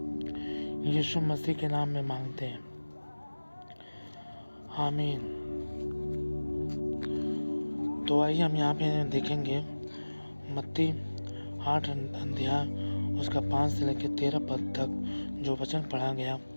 यीशु मसीह के नाम में मांगते हैं, आमीन। तो आइए हम यहाँ पे देखेंगे मत्ती 8 अध्याय उसका 5 से लेकर 13 पद तक जो वचन पढ़ा गया,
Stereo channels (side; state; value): both; inverted; correlation -1.00